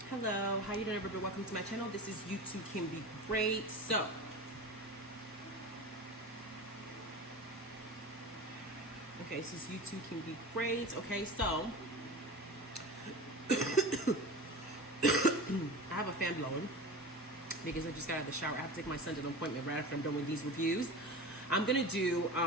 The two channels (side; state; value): both; normal; correlation 0.31